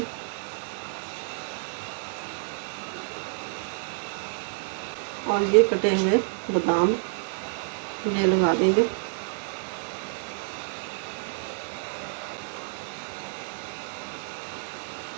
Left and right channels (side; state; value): left; silent; digital silence